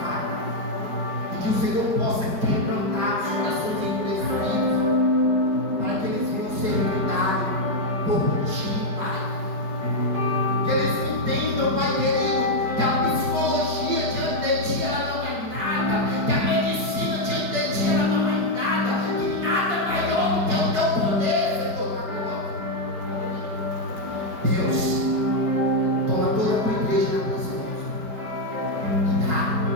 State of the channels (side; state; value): left; late; 4.8 ms